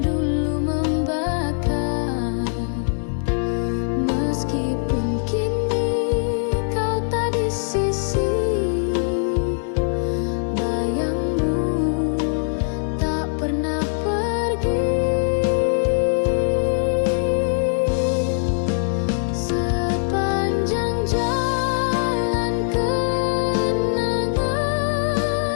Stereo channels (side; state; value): right; silent; digital silence